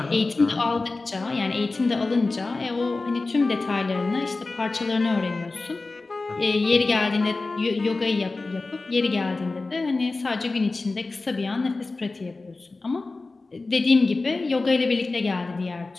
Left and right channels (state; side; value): quieter; right; 3.5 dB